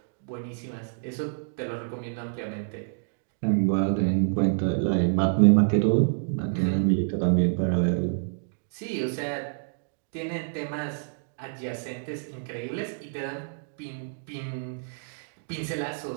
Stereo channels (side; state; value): left; silent; digital silence